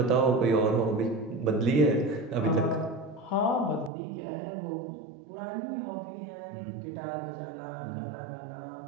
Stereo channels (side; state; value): left; drops out; at 3.9 s